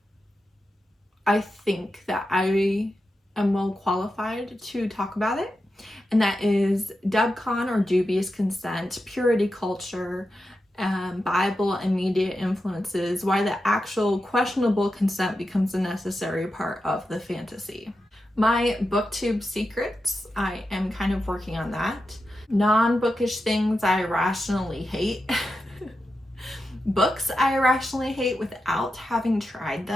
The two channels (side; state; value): both; normal; correlation 0.89